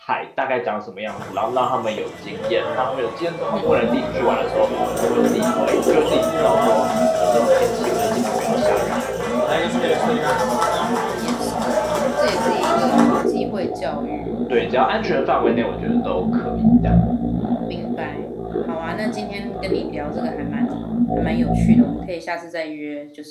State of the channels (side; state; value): both; identical; correlation 1.00